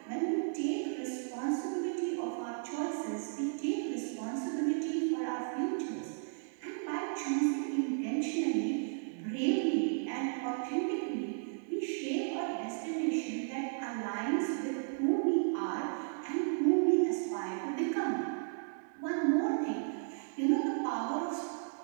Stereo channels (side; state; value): left; silent; digital silence